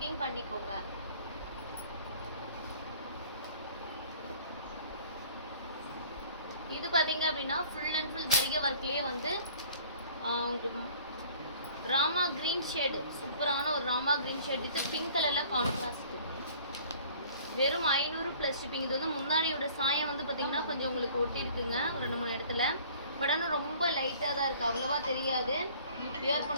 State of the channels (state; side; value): inverted; both; correlation -0.51